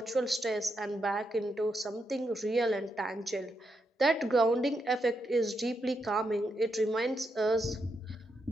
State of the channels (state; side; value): normal; both; correlation 0.82